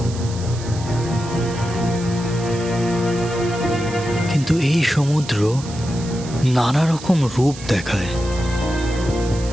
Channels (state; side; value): noise; right; hiss, 15 dB below the sound